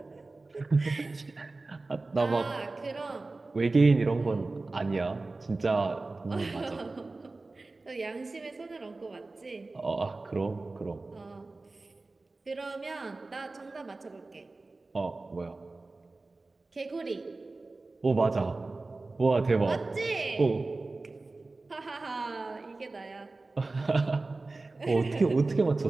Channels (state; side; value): quieter; left; 3.4 dB